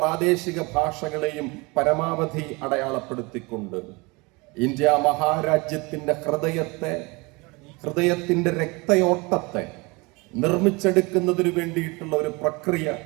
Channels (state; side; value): quieter; left; 26.3 dB